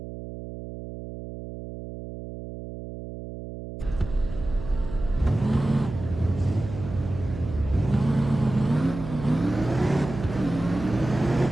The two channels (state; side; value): noise; right; hum, 10 dB below the sound